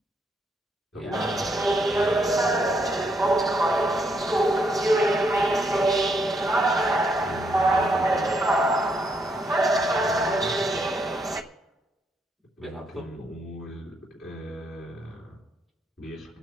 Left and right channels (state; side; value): normal; both; correlation 0.75